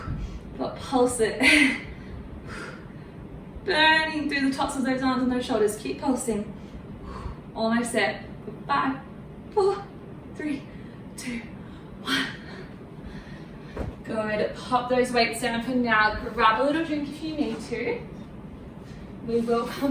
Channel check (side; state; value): both; identical; correlation 1.00